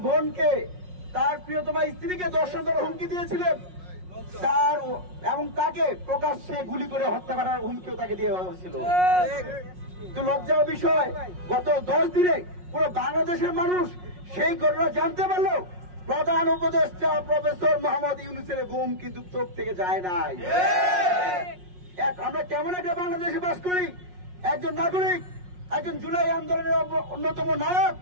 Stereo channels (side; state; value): left; late; 5.5 ms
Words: বোনকে, তার প্রিয়তমা স্ত্রীকে দর্শন করার হুমকি দিয়েছিলেন, তার এবং তাকে প্রকাশ্যে গুলি করে হত্যা করার হুমকিও তাকে দিয়ে হয়েছিল। তো লজ্জার বিষয়, গত 10 দিনে পুরো বাংলাদেশের মানুষ সেই ঘটনা জানতে পারলো। প্রধান উপদেষ্টা প্রফেসর মোহাম্মদ ইউনূসের ঘুম কিন্তু চোখ থেকে যায় নাই। আমরা কেমন একটা বাংলাদেশে বাস করি? একজন নাগরিক, একজন জুলাই আন্দোলনের অন্যতম নায়ক,